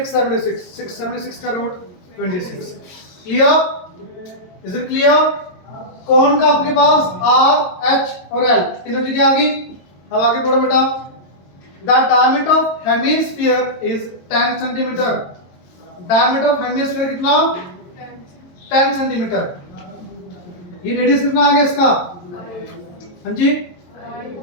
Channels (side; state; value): right; late; 22 ms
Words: 676 का root 26। Clear? Is it clear? कौन का आपके पास आर एच और एल तीनों चीजें आ गई। अब आगे पढ़ो बेटा, the diameter of hemisphere is 10 centimetre. Diameter of hemisphere कितना? 10 सेंटीमीटर। ये रेडियस कितना आ गया इसका? हाँ जी